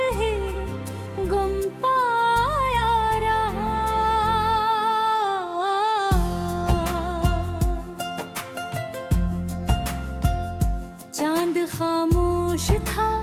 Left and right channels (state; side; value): identical; both; correlation 1.00